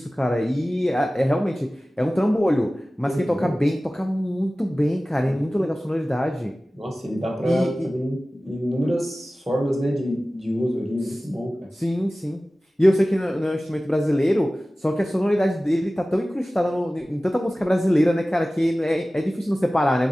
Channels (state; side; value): normal; both; correlation 0.97